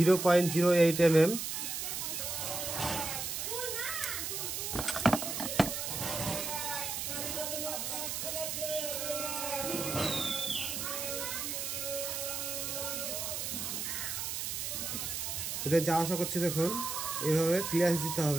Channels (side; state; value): right; noise; hiss, 3 dB below the sound